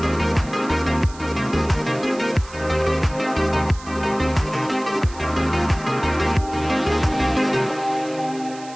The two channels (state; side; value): noise; right; hiss, 19 dB below the sound